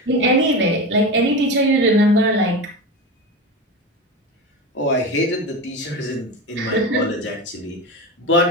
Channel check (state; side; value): normal; both; correlation 0.23